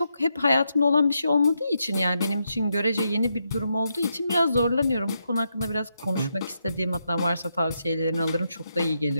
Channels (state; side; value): inverted; both; correlation -0.82